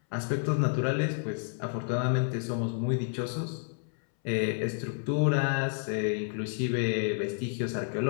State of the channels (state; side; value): silent; right; 58 dB below the other